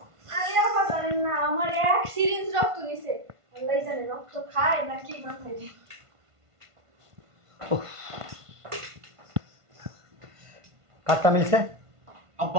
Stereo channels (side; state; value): left; late; 1.5 ms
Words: আরে আমার জানেন না, আমার এক সিরিঞ্জ রক্ত নিছে। আল্লাহই জানে রক্ত খায় নাকি না খায়। কারটা মিলছে?